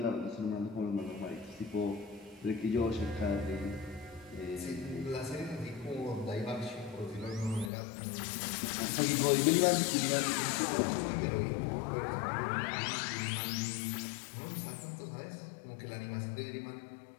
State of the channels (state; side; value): drops out; right; at 7.7 s